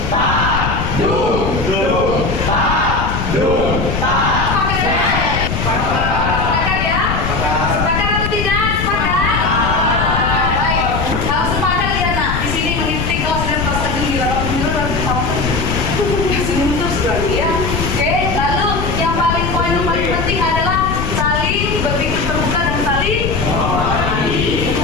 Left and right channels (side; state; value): left; noise; rumble, 2 dB below the sound